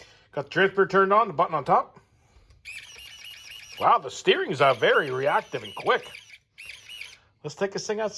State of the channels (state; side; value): identical; both; correlation 1.00